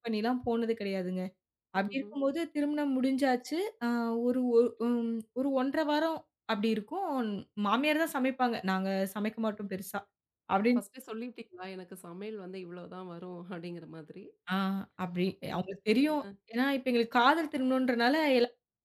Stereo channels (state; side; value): identical; both; correlation 1.00